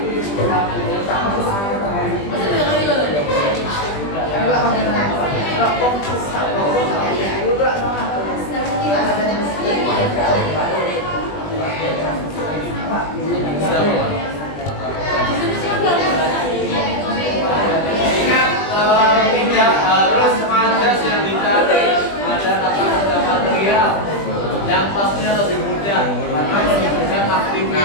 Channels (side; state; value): right; late; 20 ms